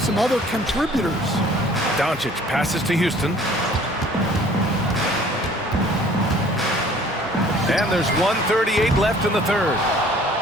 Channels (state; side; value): normal; both; correlation 0.53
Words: other contributors. Doncic passes to Houston. And there's 1:38 left in the third.